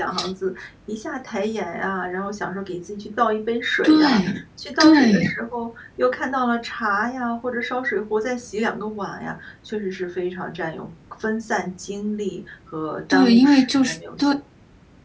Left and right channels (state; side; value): identical; both; correlation 1.00